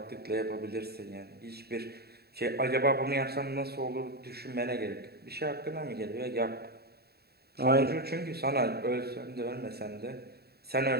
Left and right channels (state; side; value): late; left; 0.46 ms